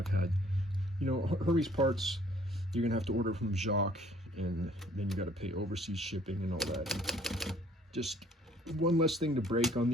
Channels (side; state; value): both; normal; correlation 0.59